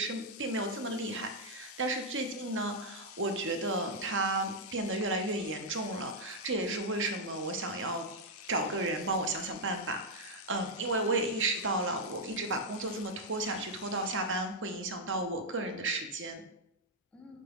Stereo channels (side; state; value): both; normal; correlation -0.02